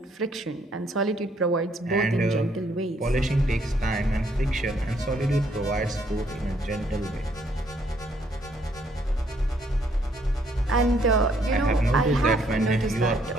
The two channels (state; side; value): normal; both; correlation 0.68